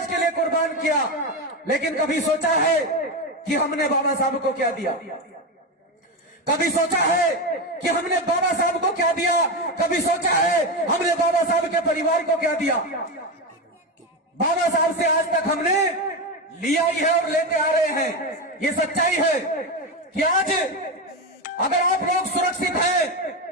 के लिए कुर्बान किया, लेकिन कभी सोचा है कि हमने बाबा साहब को क्या दिया? कभी सोचा है कि हमने बाबा साहब को क्या दिया? कभी सोचा है हमने बाबा साहब के परिवार को क्या दिया? बाबा साहब से आज तक हमने लिया ही है और लेते आ रहे हैं। ये सच्चाई है कि आज अगर आप लोग सुरक्षित हैं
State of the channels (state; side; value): normal; both; correlation 0.15